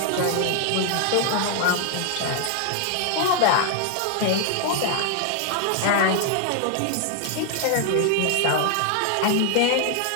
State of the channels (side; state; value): both; different; correlation 0.00